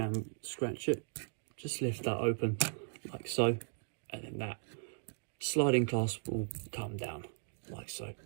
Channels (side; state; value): left; silent; 53 dB below the other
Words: scratch it. Just lift that open like so, and then that sliding clasp will come down like so.